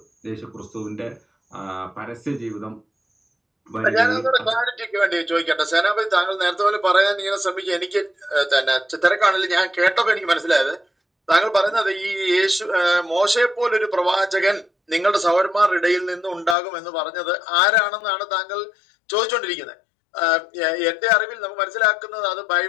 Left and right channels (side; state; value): right; drops out; at 16.6 s